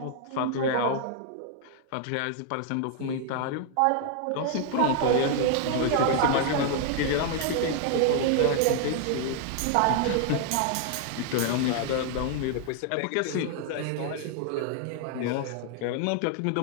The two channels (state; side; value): different; both; correlation 0.00